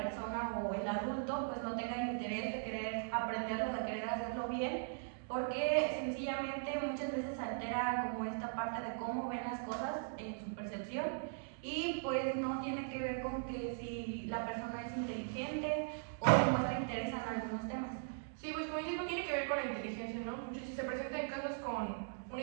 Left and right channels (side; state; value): left; silent; digital silence